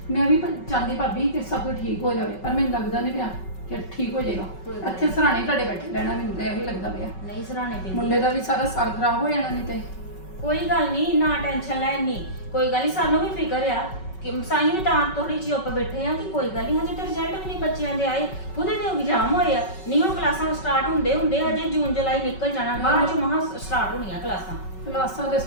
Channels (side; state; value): right; late; 5.3 ms